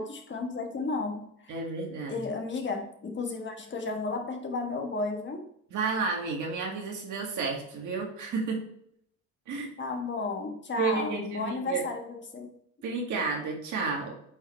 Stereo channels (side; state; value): both; normal; correlation 0.13